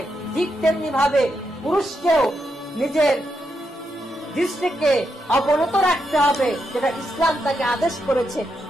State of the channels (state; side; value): normal; both; correlation 0.83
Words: ঠিক তেমনি ভাবে পুরুষকেও নিজের দৃষ্টিকে অবনত রাখতে হবে, যেটা ইসলাম তাকে আদেশ করেছে